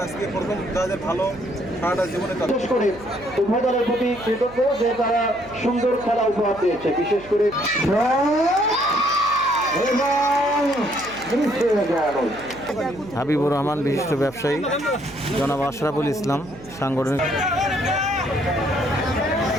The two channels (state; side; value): noise; right; hum, 20 dB below the sound